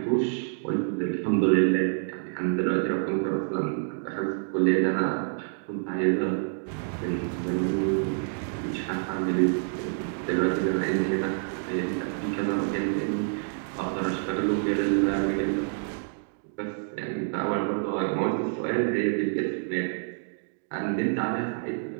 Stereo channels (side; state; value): left; silent; digital silence